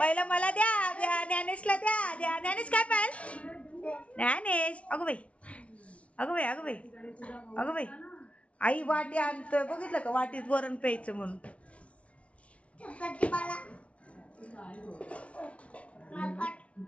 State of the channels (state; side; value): late; right; 0.063 ms